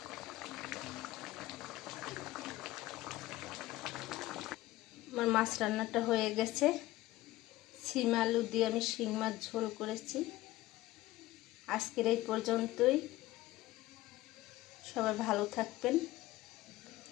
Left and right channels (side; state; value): right; quieter; 17.1 dB